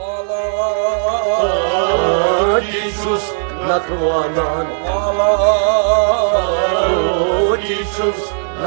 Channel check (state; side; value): silent; left; 56 dB below the other